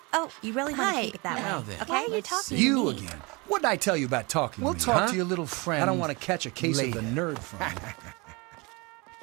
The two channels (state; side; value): quieter; left; 27.1 dB